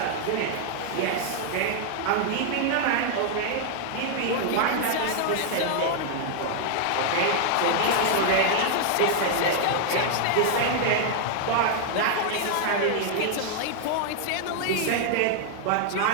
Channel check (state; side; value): different; both; correlation 0.00